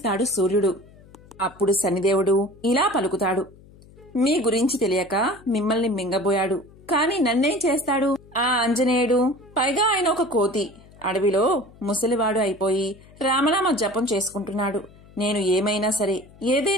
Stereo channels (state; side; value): noise; left; hum, 24 dB below the sound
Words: సూర్యుడు. అప్పుడు శనిదేవుడు ఇలా పలుకుతాడు: మీ గురించి తెలియక మిమ్మల్ని మింగబోయాడు, కాని నన్నేం చేస్తాడు? ఆ ఆంజనేయుడు, పైగా ఆయన ఒక కోతి, అడవిలో ముసలివాడు అయిపోయి రామనామ జపం చేసుకుంటున్నాడు. నేను ఏమైనా సరే,